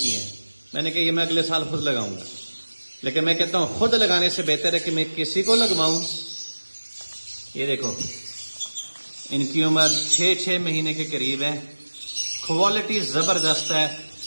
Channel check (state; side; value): inverted; both; correlation -1.00